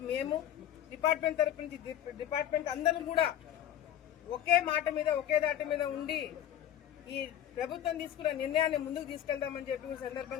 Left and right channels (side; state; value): right; quieter; 10.9 dB